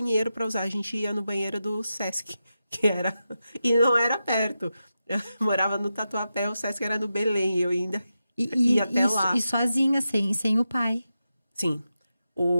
para usar. A gente ia no banheiro do Sesc, e não era perto. Eu morava no Tatuapé, o Sesc era no Belém, eu ainda ia até lá. E sozinha, sem o pai. Sim.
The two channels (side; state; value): both; inverted; correlation -0.90